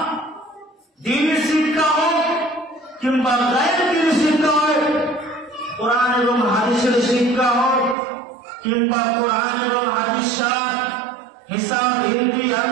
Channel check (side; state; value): left; drops out; at 8.0 s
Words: দ্বীনি শিক্ষা হোক কিংবা গায়ের দ্বীনি শিক্ষা হোক, কোরআন এবং হাদিসের শিক্ষা হোক কিংবা কোরআন এবং হাদিস ছাড়া হিসাব, হিন্দি,